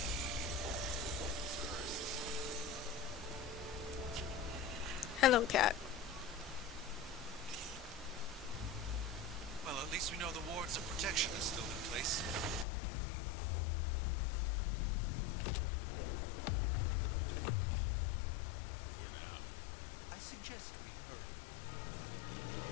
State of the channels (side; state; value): right; drops out; at 12.7 s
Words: Hello, cat. Well, at least we know the wards of protection is still in place. For now. I suggest we hurry.